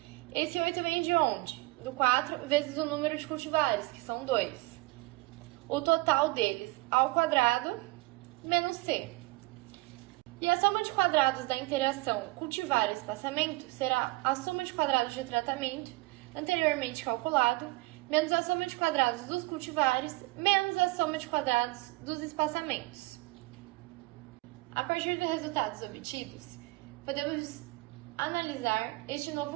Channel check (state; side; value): quieter; left; 23.0 dB